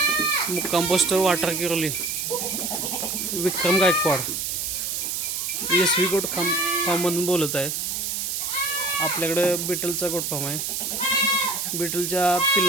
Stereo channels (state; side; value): noise; right; hiss, 2 dB below the sound